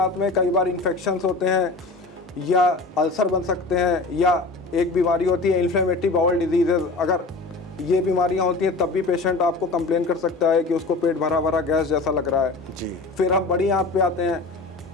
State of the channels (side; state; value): right; quieter; 3.5 dB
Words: में कई बार इन्फेक्शंस होते हैं या अल्सर बन सकते हैं, या एक बीमारी होती है इन्फ्लेमेटरी बाउल डिजीजेज। अगर ये बीमारियां होती हैं तब भी पेशेंट आपको कंप्लेन कर सकता है कि उसको पेट भरा भरा गैस जैसा लग रहा है। जी। फिर हम बड़ी आंत पे आते हैं।